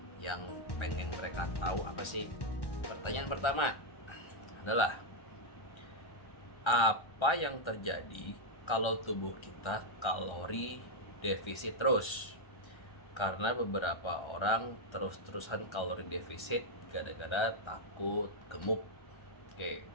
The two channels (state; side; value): late; right; 1.3 ms